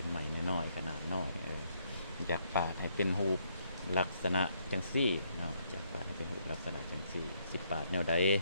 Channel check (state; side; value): inverted; both; correlation -0.72